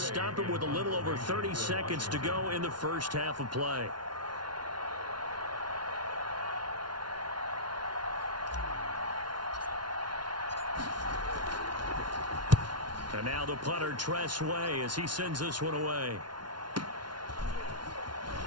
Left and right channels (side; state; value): left; late; 0.70 ms